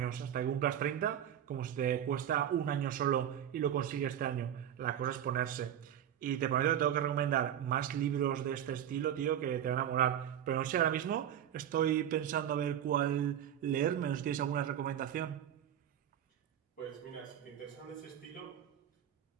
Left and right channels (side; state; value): left; quieter; 10.1 dB